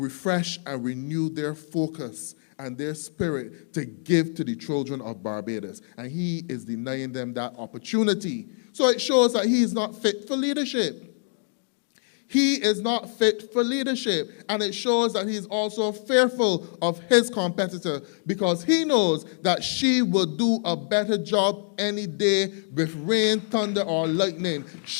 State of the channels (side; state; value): right; silent; 61 dB below the other